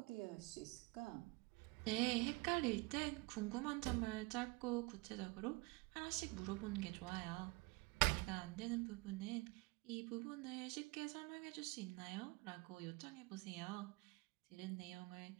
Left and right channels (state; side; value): quieter; left; 25.3 dB